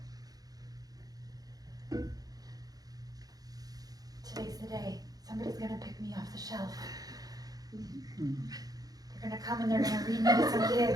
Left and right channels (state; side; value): late; left; 0.18 ms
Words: Today's the day. Somebody's gonna pick me off the shelf. They're gonna come and they're gonna read me to some